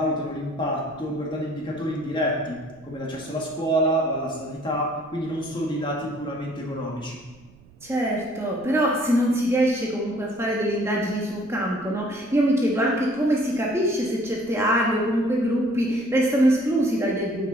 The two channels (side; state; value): right; noise; rumble, 26 dB below the sound